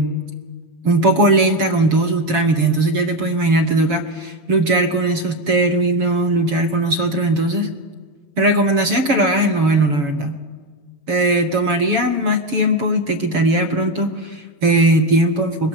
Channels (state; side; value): late; left; 7.1 ms